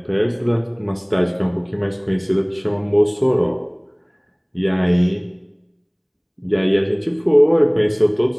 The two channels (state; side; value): identical; both; correlation 1.00